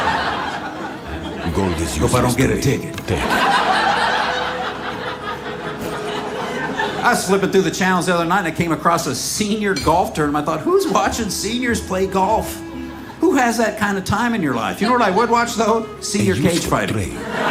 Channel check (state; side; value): identical; both; correlation 1.00